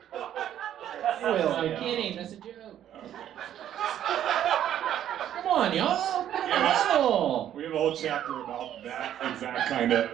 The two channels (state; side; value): quieter; left; 10.9 dB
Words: I'm kidding. That's a joke. Come on, y'all. We have a whole chapter about that exact kind